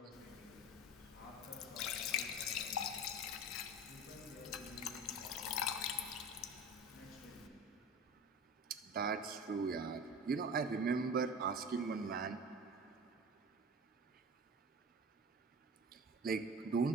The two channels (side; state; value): both; normal; correlation 0.35